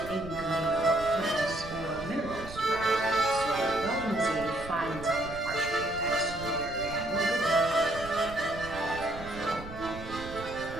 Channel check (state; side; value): noise; right; rumble, 13 dB below the sound